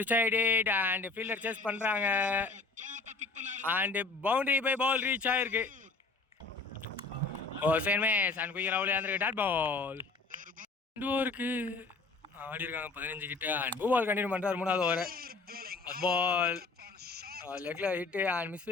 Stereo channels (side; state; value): right; quieter; 3.8 dB